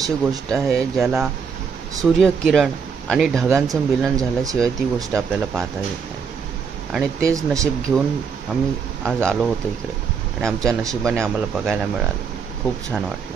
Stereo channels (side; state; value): left; quieter; 6.2 dB